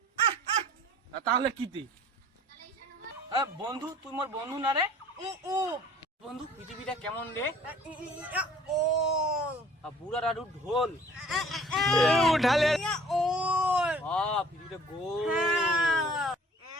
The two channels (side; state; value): both; normal; correlation 0.52